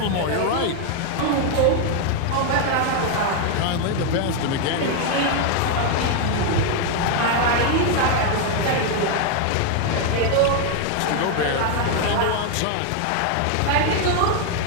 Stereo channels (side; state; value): both; different; correlation 0.01